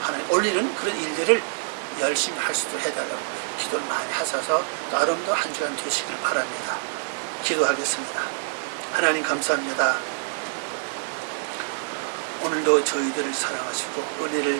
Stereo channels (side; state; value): left; silent; 57 dB below the other